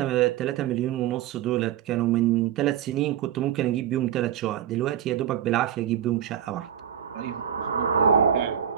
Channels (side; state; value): left; quieter; 9.6 dB